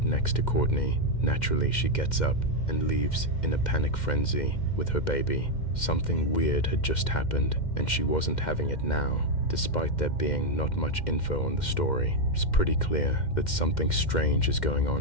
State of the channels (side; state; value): right; late; 2.1 ms